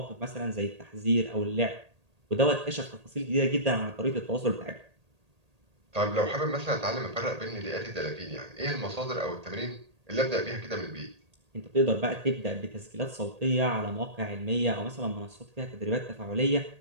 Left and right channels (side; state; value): left; late; 1.8 ms